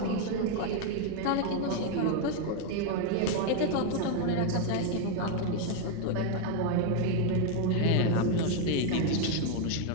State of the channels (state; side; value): different; both; correlation 0.01